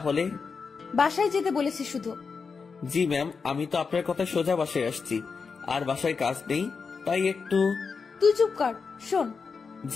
বাসায় যেতে বলেছি শুধু। জি ম্যাম, আমি তো আপনার কথা সোজা বাসায় আসছি। আর বাসায় কাজ নেই, তাই একটু। তুই চুপ কর, শোন।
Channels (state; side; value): quieter; right; 5.2 dB